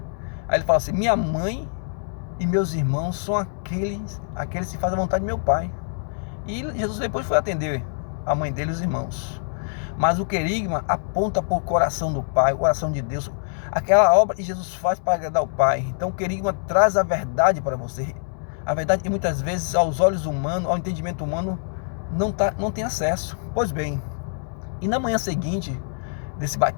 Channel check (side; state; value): right; silent; digital silence